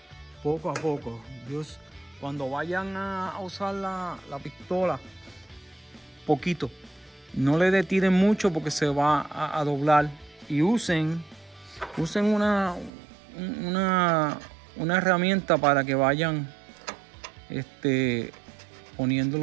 Dios, cuando vayan a usar la pistola, poquito, no le detiren mucho porque se va a doblar, y usen una herramienta para que vayan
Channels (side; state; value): left; drops out; at 12.9 s